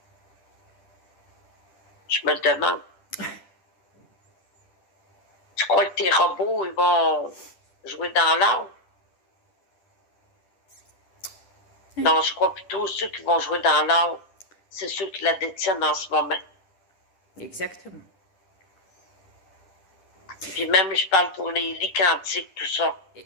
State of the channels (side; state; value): right; late; 10 ms